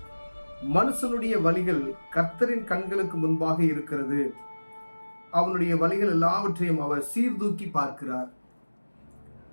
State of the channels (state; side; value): inverted; both; correlation -1.00